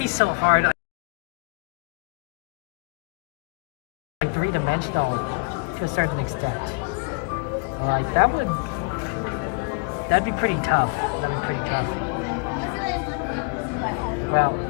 so hard. Like three-dimensional to a certain extent. Like that'd be pretty tough. That'd be pretty tough. Well,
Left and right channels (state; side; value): quieter; right; 31.8 dB